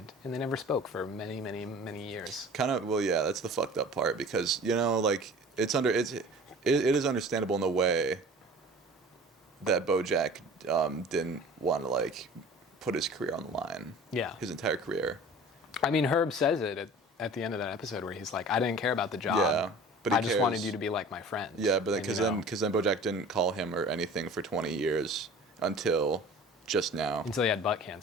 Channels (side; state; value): both; normal; correlation 0.43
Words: and they never spoke for many, many, many years. Kind of, well, yeah, that's the fucked up part because, you know, like, it is understandable in the way that BoJack didn't want to, like, put his career on the line. Yeah. His entire career. I mean, Herb says it at the end of that episode where he's like, I didn't care about the job. Yeah, but he I just cares. wanted you to be like my friend. Yeah, but then, And, because you know, then BoJack didn't call him or anything for 20 years until just now. until he had butt